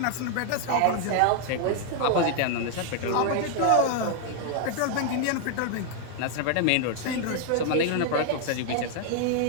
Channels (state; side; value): different; both; correlation 0.00